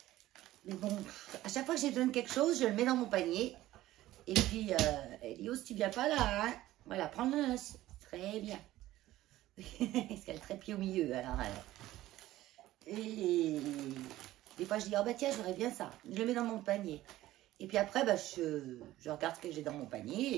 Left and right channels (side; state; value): left; quieter; 15.4 dB